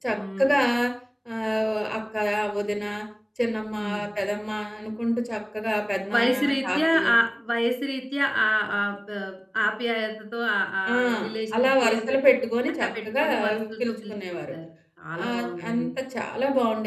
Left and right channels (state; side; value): identical; both; correlation 1.00